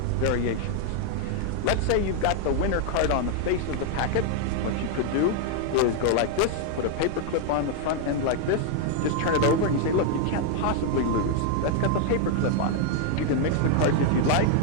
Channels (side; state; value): both; different; correlation 0.00